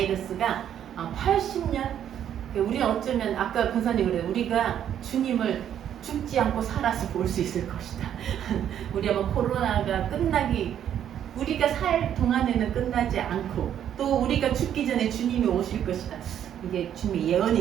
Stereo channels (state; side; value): quieter; left; 9.9 dB